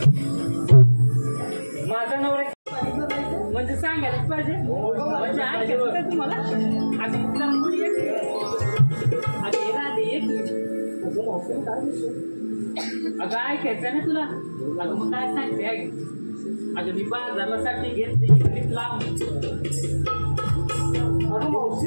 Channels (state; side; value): inverted; both; correlation -1.00